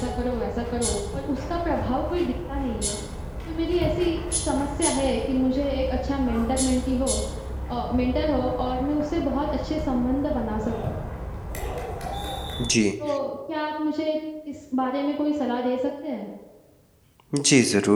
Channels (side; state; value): both; identical; correlation 1.00